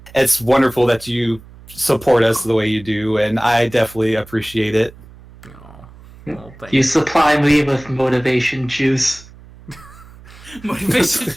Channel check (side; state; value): right; noise; hum, 21 dB below the sound